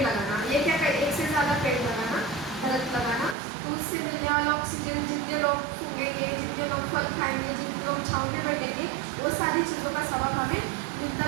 लगाना। ये क्या कर, एक से ज़्यादा पेड़ लगाना, दरख्त लगाना, तो उससे मिलने वाला ऑक्सीजन, जितने लोग सूंघेंगे, जितने लोग फल खाएंगे, जितने लोग छाँव में बैठेंगे, वो सारी चीज़ों का सवाब हमें मिलता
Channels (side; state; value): left; drops out; at 3.4 s